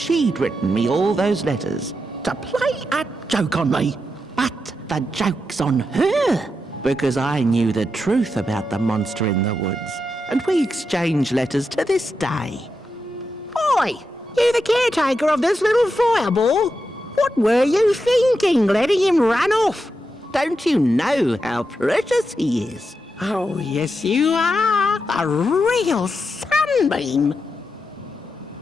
written me all those letters to play a joke on me. But the joke's on her, because I knew the truth about the monster in the woods, and we exchange letters to this day. Oi! You the caretaker of this little fireball? What were you thinking, letting him run off? Don't you know how precious he is? Oh, yes you are. A real sunbeam.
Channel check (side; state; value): both; normal; correlation 0.86